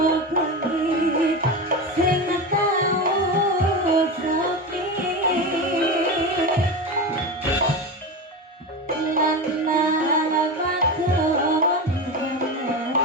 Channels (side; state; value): both; normal; correlation 0.22